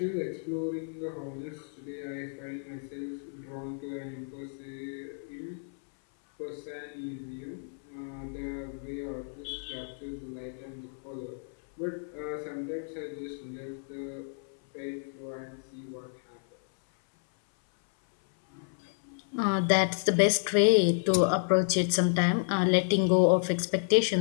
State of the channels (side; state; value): right; silent; 57 dB below the other